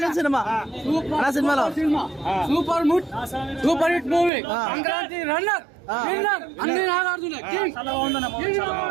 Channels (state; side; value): drops out; left; at 4.3 s